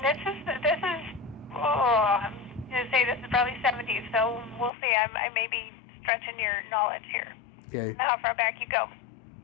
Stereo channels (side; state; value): right; drops out; at 4.7 s